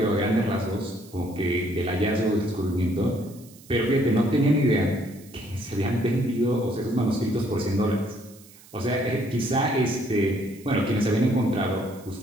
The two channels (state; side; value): noise; right; hiss, 23 dB below the sound